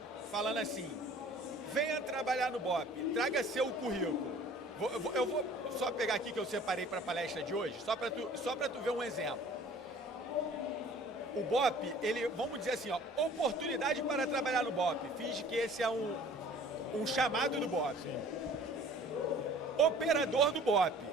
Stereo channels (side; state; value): both; normal; correlation 0.49